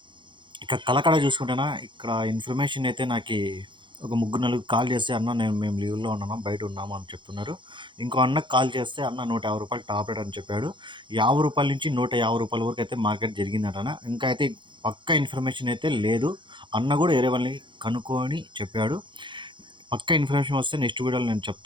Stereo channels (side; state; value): left; late; 0.23 ms